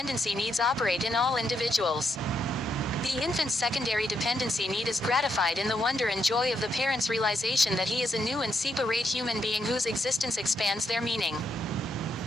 needs operate in all individuals. The infant's secondary dependency need is gratified in the wonder and joy of the parent's realization that he is a new and separate human being whose existence expands their meaning.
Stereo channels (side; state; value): both; normal; correlation 0.79